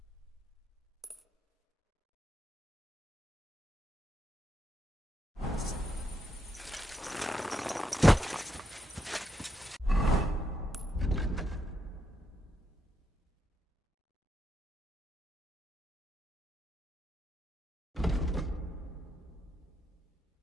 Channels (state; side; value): normal; both; correlation 0.81